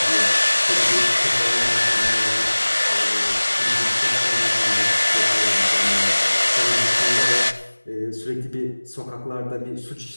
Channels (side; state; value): both; inverted; correlation -1.00